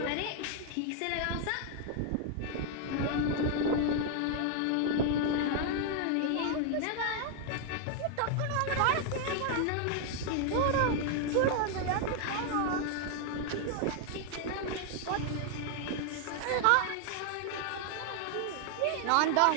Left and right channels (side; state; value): both; different; correlation 0.00